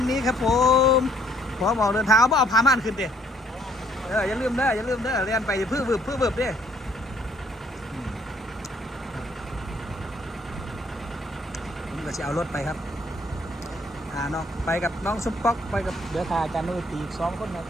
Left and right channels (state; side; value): normal; both; correlation 0.64